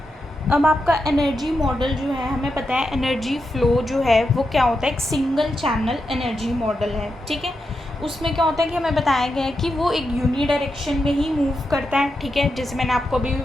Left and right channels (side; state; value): both; normal; correlation 0.86